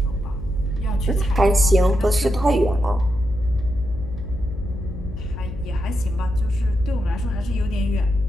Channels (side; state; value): left; noise; hum, 10 dB below the sound